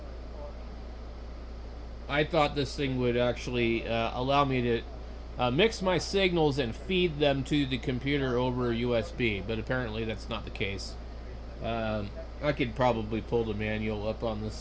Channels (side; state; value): both; identical; correlation 1.00